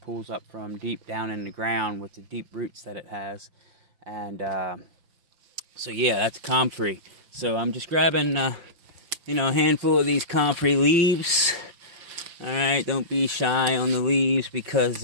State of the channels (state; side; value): late; left; 5.8 ms